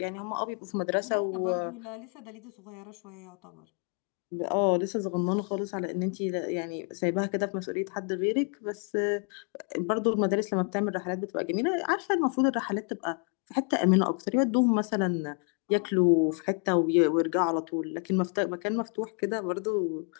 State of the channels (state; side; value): quieter; right; 38.9 dB